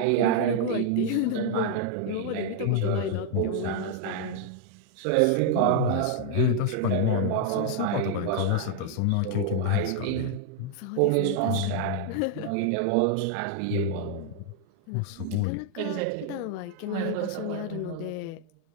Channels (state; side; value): different; both; correlation 0.00